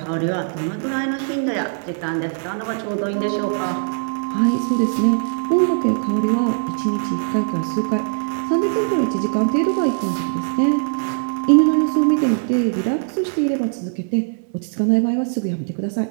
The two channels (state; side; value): silent; left; digital silence